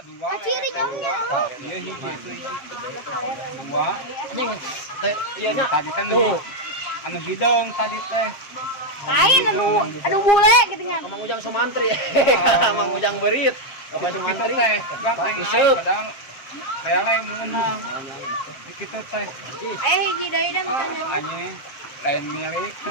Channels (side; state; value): right; late; 7.5 ms